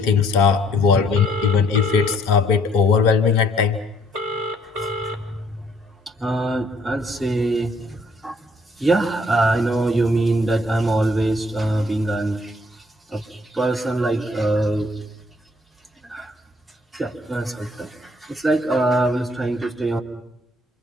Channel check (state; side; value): normal; both; correlation 0.64